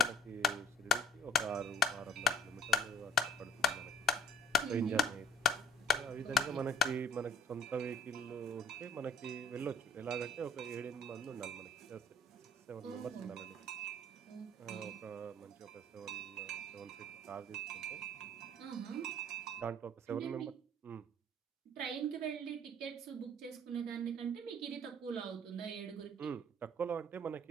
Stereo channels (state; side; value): normal; both; correlation 0.52